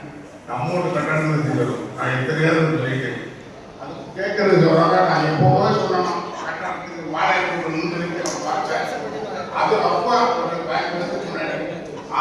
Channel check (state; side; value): identical; both; correlation 1.00